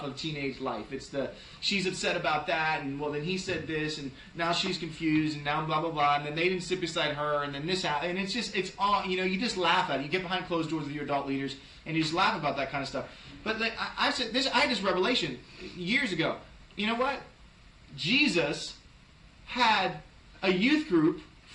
of teenage life. It's she's upset about that, and well, then he said this, and now she's confused, and now blah blah blah, and then they didn't sit beside her, and then this happened, and it's all you just laugh at it. You get behind closed doors with your adult leaders, and you just laugh about that kind of stuff. But I said this. I had this revelation years ago. You know what? Jesus had a youth group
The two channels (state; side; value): identical; both; correlation 1.00